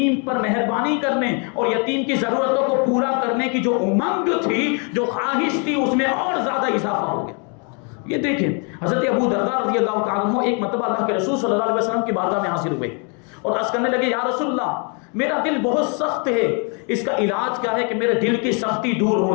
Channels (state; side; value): quieter; right; 36.9 dB